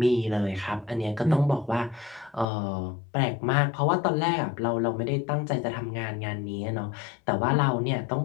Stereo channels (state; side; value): drops out; right; at 2.5 s